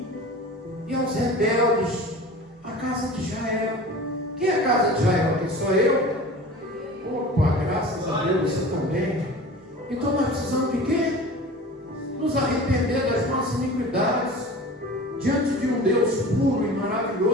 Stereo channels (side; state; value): both; normal; correlation 0.38